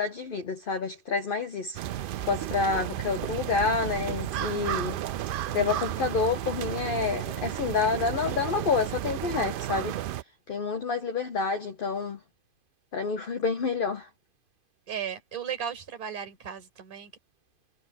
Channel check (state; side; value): late; right; 2.5 ms